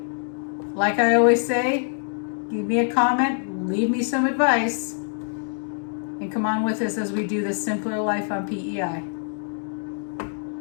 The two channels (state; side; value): silent; right; digital silence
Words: Like I always say, give me a comment, leave me some advice, and come on with us as we do this simpler life on PEI.